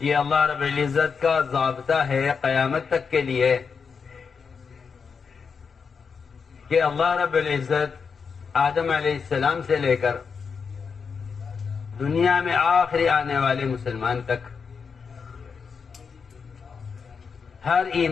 اللہ رب العزت کا ضابطہ ہے قیامت تک کے لیے کہ اللہ رب العزت آدم علیہ السلام سے لے کر دنیا میں آخری آنے والے مسلمان تک ہر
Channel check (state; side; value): quieter; right; 5.7 dB